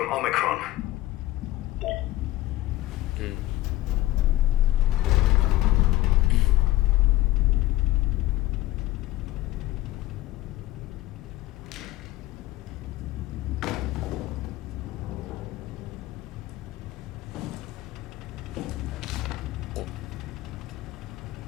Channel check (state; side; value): quieter; right; 16.4 dB